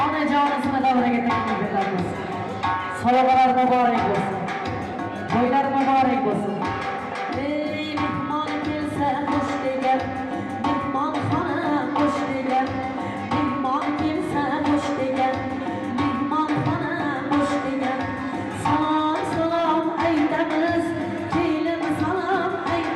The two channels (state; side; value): identical; both; correlation 1.00